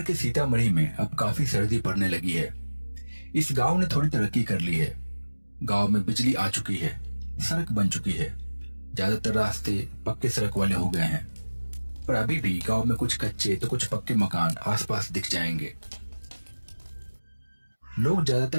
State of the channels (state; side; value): inverted; both; correlation -1.00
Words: के सीतामढ़ी में अब काफी सर्दी पड़ने लगी है। इस गांव ने थोड़ी तरक्की कर ली है। गांव में बिजली आ चुकी है, सड़क बन चुकी है, ज्यादातर रास्ते पक्के सड़क वाले हो गए हैं। पर अभी भी गांव में कुछ कच्चे तो कुछ पक्के मकान आसपास दिख जाएंगे। लोग